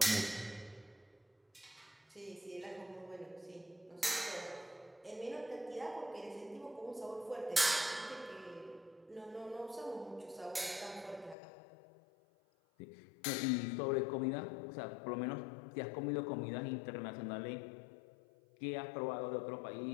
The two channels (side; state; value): right; drops out; at 11.4 s